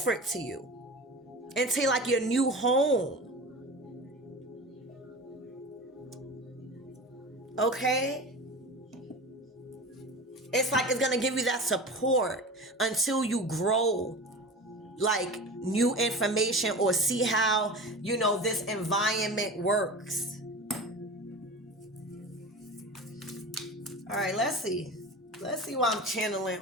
to you into like your new home. Okay? It's like it's going to give you that support until you grow like new information or see how, this environment works. All right, let's see. Let's see why I'm channeling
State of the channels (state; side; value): normal; both; correlation 0.33